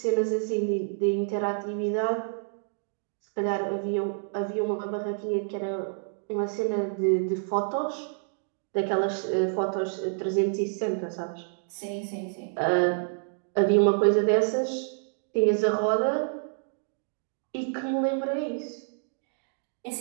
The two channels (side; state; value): left; silent; digital silence